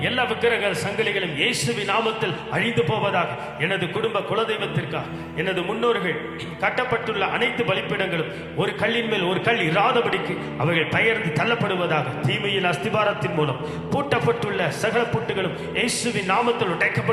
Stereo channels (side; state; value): both; identical; correlation 1.00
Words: எல்லா விக்கிரக சங்கிலிகளும் இயேசுவின் நாமத்தில் அழிந்து போவதாக. எனது குடும்ப குலதெய்வத்திற்காக எனது முன்னோர்கள் கட்டப்பட்டுள்ள அனைத்து பலிப்பீடங்களும் ஒரு கல்லின் மேல் ஒரு கல் இராதபடிக்கு அவைகள் பெயர்ந்து தள்ளப்படுவதாக. தீமையின் அஸ்திபாரத்தின் மூலம் பூட்டப்பட்டுள்ள சகல பூட்டுகளும் இயேசுவின் நாமத்தில்